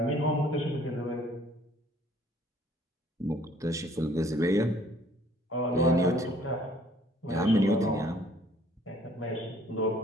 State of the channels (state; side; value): normal; both; correlation 0.58